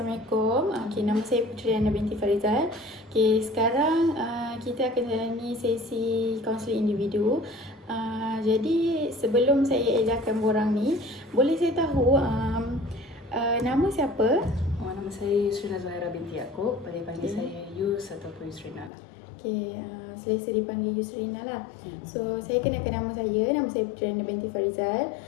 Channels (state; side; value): drops out; right; at 18.9 s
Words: Nama saya Puteri Ana binti Farizal. Sekarang kita akan jalani sesi kaunseling individu. Jadi sebelum saya edarkan borang ni, boleh saya tahu nama siapa? Nama saya Yusrina Zahira binti Yaakob. Boleh panggil saya Yus ataupun Yusrina lah. Selesa dipanggil Yusrina lah. So saya kenalkan nama saya Puteri Ana binti Farizal.